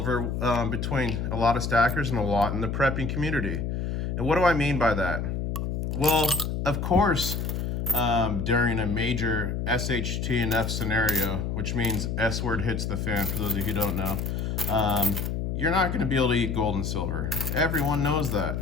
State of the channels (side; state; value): left; noise; hum, 2 dB below the sound